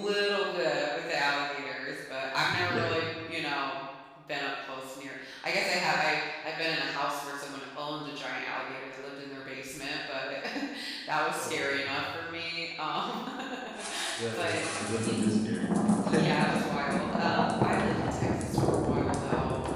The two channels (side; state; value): both; identical; correlation 1.00